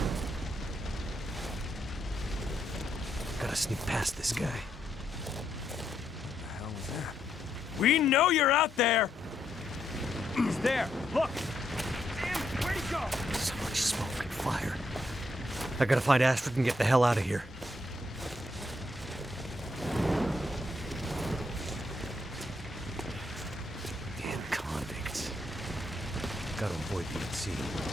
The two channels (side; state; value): both; normal; correlation 0.77